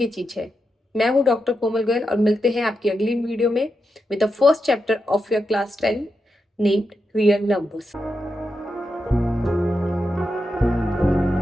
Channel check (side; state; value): both; normal; correlation 0.87